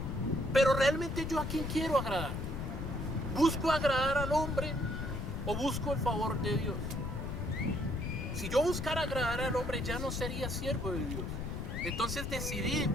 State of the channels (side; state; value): left; noise; rumble, 4 dB below the sound